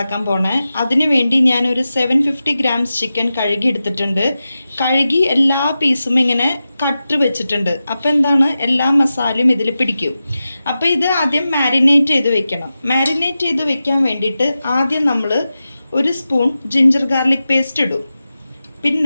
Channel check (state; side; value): inverted; both; correlation -0.93